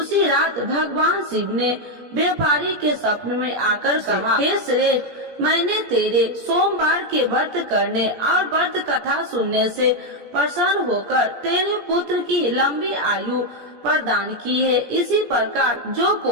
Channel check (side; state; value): left; late; 17 ms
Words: रात भगवान शिव ने व्यापारी के स्वप्न में आकर कहा, हे श्रेष्ठ, मैंने तेरे सोमवार के व्रत करने और व्रत कथा सुनने से प्रसन्न होकर तेरे पुत्र की लंबी आयु प्रदान की है। इसी प्रकार जो